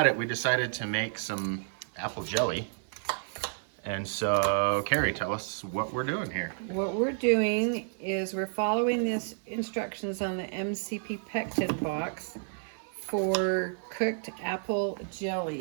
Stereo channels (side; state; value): left; silent; 57 dB below the other